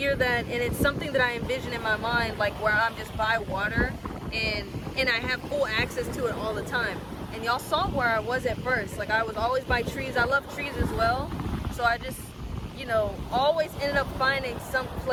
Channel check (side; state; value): both; identical; correlation 1.00